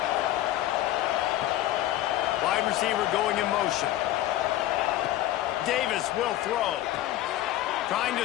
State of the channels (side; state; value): right; quieter; 14.2 dB